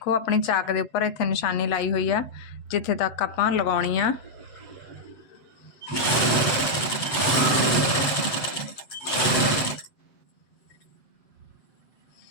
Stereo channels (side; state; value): right; late; 7.8 ms